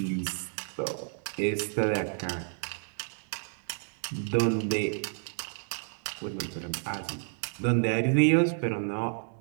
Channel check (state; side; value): silent; left; 57 dB below the other